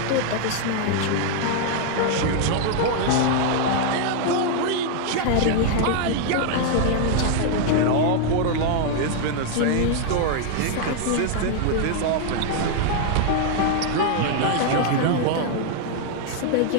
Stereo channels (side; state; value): both; different; correlation 0.00